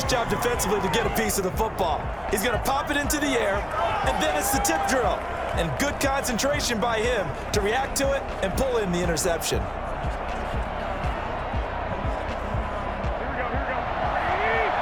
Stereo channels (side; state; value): both; identical; correlation 1.00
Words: job defensively to get a piece of the football. He's going to pop it into the air, and then it's the tip drill. And good concentration by him to react to it and pull in the interception.